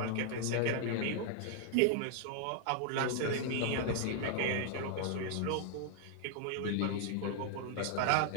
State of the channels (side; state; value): both; different; correlation 0.00